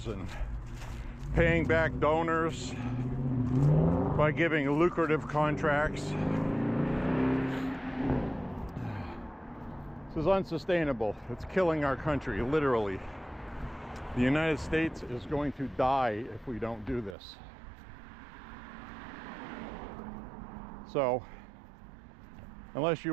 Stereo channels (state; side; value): drops out; left; at 17.2 s